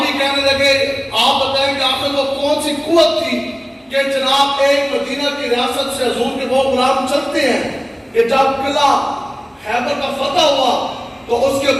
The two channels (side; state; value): both; identical; correlation 1.00